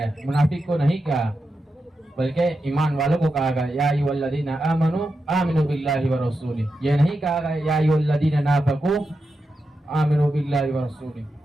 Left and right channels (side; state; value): both; normal; correlation 0.88